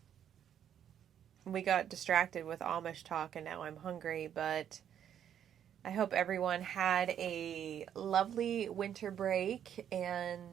we got distracted with Amish talk, and now I'm hungry. But I hope everyone had a lovely winter break,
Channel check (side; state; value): left; quieter; 9.5 dB